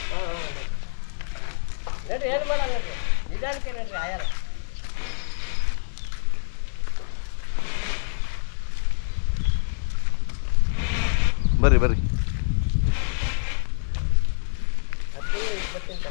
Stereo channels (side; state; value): right; silent; digital silence